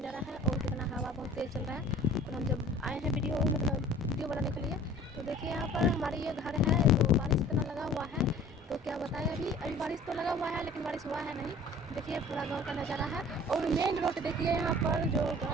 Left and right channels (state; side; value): normal; both; correlation 0.48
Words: है और कितना हवा बहुत तेज़ चल रहा है। और हम जब आए हैं वीडियो बनाने के लिए, तो देखिए यहाँ पर हमारे ये घर है, तो बारिश इतना लगा हुआ है, तो क्या बताएं। अभी बारिश तो लगा हुआ है लेकिन बारिश हुआ है नहीं। देखिए पूरा गाँव का नज़ारा है और मेन रोड देखिए, यहाँ पर जो